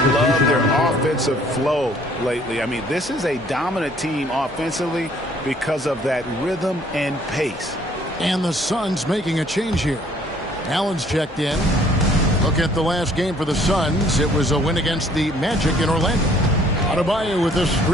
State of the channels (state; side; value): normal; both; correlation 0.59